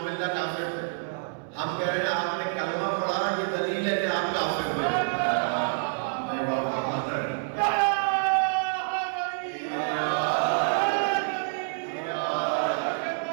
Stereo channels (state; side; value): silent; left; 60 dB below the other